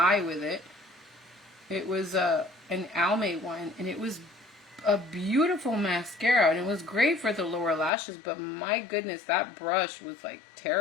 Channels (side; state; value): right; drops out; at 7.9 s